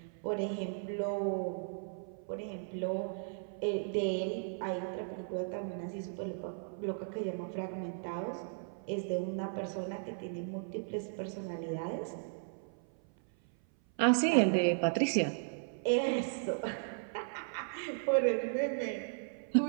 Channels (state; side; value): silent; left; 54 dB below the other